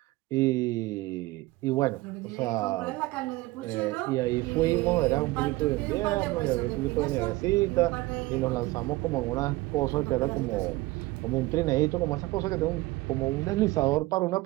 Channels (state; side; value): quieter; left; 19.8 dB